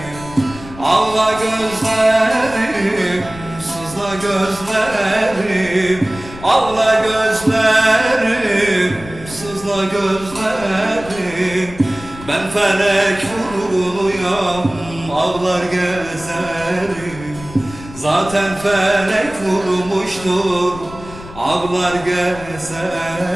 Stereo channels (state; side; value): noise; left; rumble, 16 dB below the sound